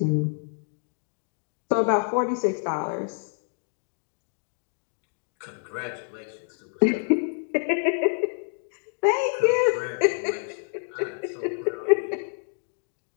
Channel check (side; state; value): right; silent; digital silence